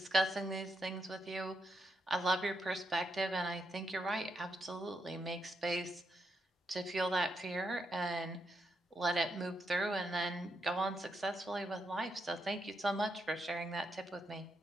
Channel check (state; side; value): normal; both; correlation 0.81